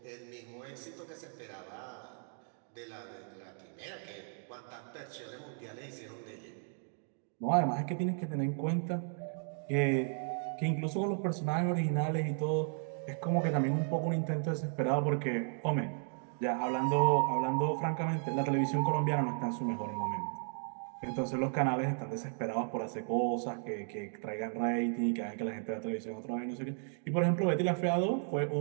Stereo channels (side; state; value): left; silent; 55 dB below the other